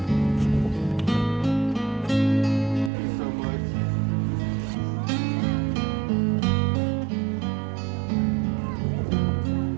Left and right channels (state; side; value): drops out; left; at 2.9 s